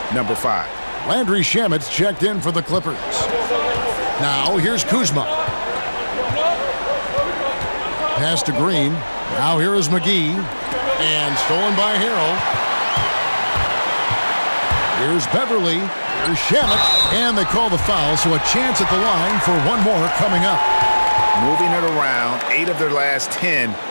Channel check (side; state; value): both; inverted; correlation -1.00